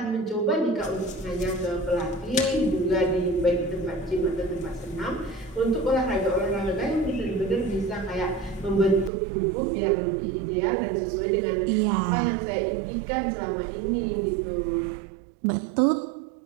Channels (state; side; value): drops out; left; at 9.1 s